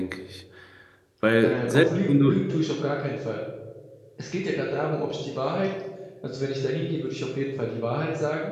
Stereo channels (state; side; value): identical; both; correlation 1.00